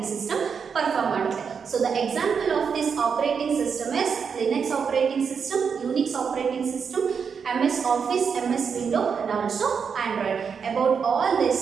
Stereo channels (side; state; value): left; quieter; 6.3 dB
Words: ಸಿಸ್ಟಮ್ ಪರ್ಫಾರ್ಮ್ ಮಾಡುತ್ತೆ. So the example of this operating system is Linux operating system, Unix operating system, MS Office, MS Windows, and also Android. About all these